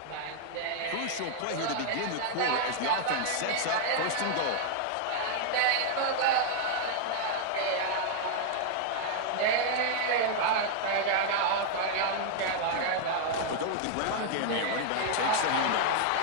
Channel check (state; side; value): different; both; correlation 0.00